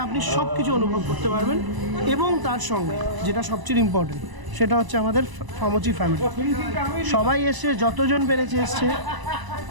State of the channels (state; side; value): late; left; 1.0 ms